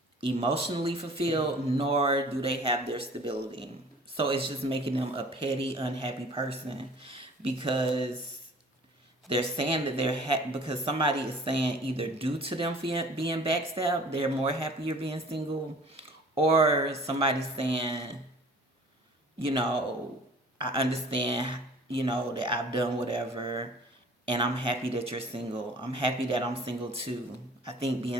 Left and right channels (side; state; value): both; normal; correlation 0.48